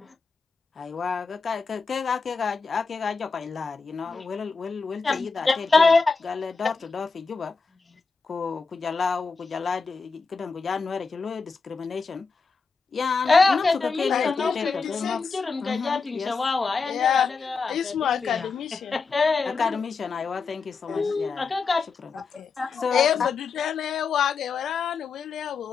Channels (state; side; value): quieter; right; 4.7 dB